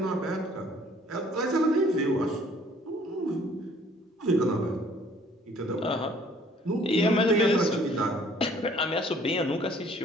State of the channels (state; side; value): normal; both; correlation 0.57